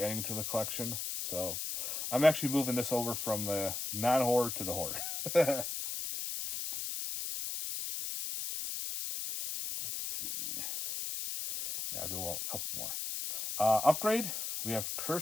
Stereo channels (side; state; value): left; noise; hiss, 4 dB below the sound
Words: adding to the collection. So I'm actually moving this over from the non-horror to the horror. Let's see. Yeah, I'll do a couple more. Upgrade, we have